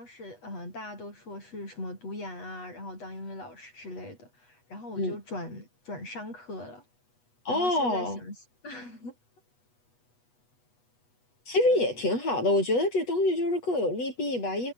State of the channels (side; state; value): right; late; 8.2 ms